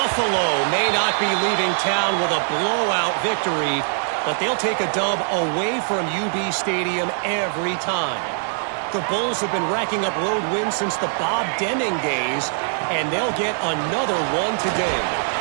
may not be leaving town with a blowout victory, but they'll take a dub away from UB Stadium every time. The Bulls have been racking up road wins since the Bob Deming days, and they'll get another one today.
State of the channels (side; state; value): left; silent; digital silence